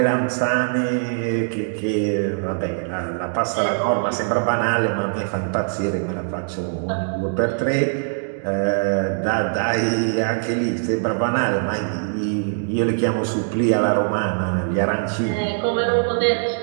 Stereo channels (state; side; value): silent; left; digital silence